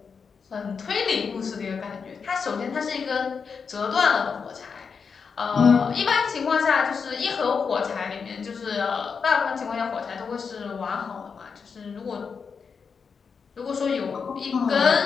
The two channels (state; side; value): quieter; right; 5.8 dB